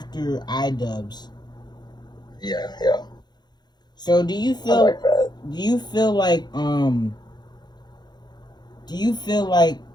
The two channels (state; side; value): late; right; 0.21 ms